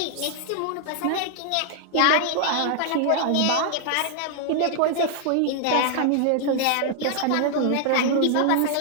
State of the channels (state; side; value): different; both; correlation -0.01